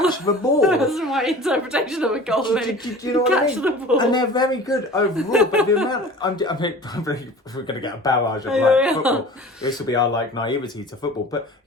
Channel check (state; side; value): normal; both; correlation 0.41